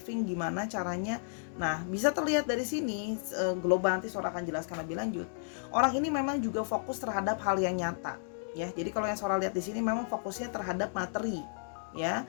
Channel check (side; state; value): right; silent; digital silence